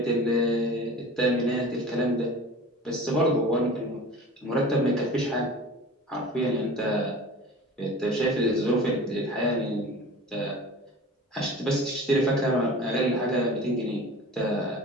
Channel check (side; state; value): both; normal; correlation 0.39